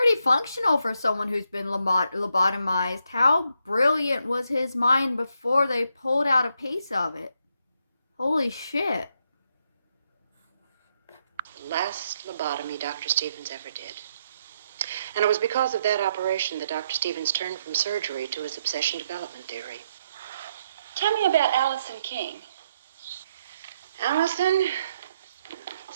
functional for someone who's been lobotomized. How brilliant was his mind before they pulled out a piece of it? Holy shit. The last lobotomy Dr. Stevens ever did. And it was because of that operation that Dr. Stevens turned from surgery to his obsession development theory. Tell me about Allison King. Allison,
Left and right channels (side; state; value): both; inverted; correlation -0.76